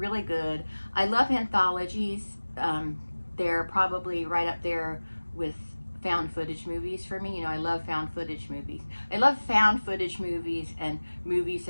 good. I love anthologies. They're probably right up there with found footage movies for me. You know, I love found footage movies. I love found footage movies and movies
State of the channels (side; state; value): both; inverted; correlation -1.00